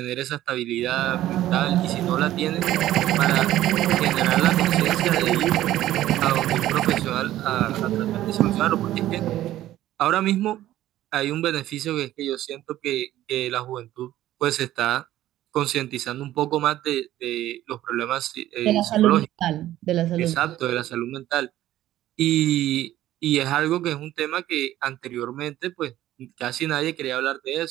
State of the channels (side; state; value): left; quieter; 13.9 dB